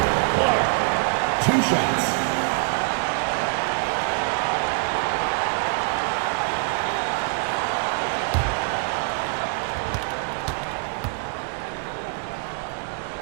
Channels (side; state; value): left; quieter; 36.2 dB